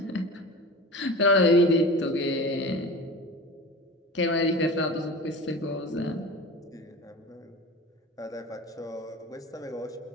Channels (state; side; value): normal; both; correlation 0.34